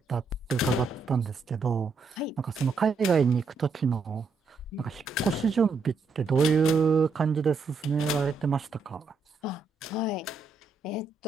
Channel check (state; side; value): quieter; left; 4.4 dB